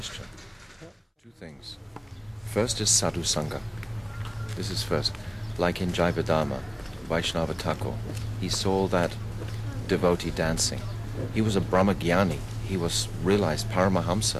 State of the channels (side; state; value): both; identical; correlation 1.00